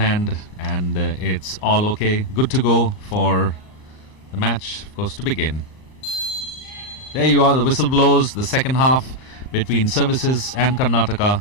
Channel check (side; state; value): right; late; 39 ms